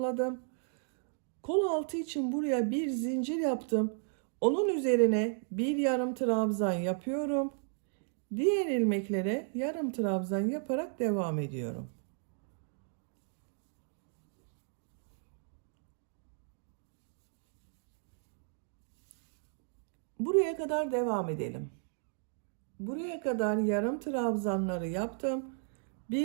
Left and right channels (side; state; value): left; silent; 55 dB below the other